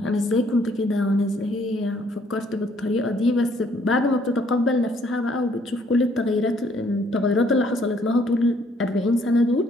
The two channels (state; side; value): normal; both; correlation 0.65